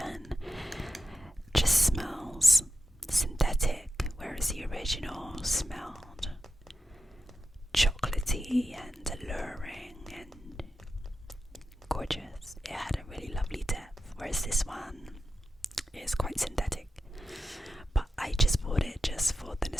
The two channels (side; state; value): both; normal; correlation 0.90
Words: just smells synthetic, whereas the original smelled chocolatey and alluring and gorgeous. It had a really lovely depth, whereas this one is quite synthetic. But I just bought it just for the